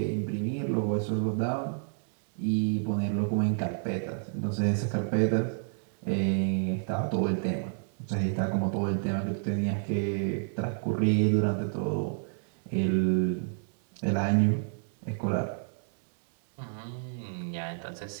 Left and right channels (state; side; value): silent; left; digital silence